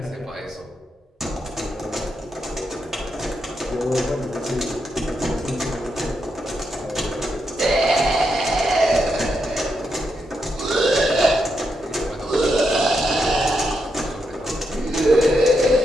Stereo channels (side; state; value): both; normal; correlation 0.82